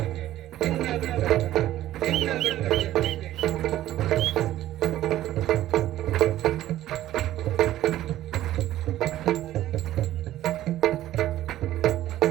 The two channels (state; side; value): quieter; left; 13.8 dB